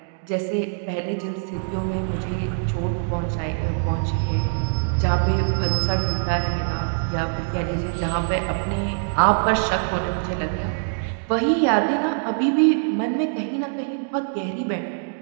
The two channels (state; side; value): silent; left; digital silence